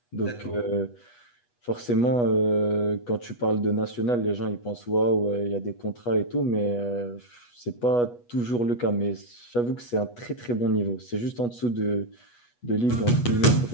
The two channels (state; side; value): late; right; 8.2 ms